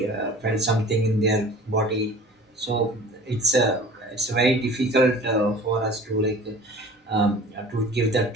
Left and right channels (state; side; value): normal; both; correlation 0.44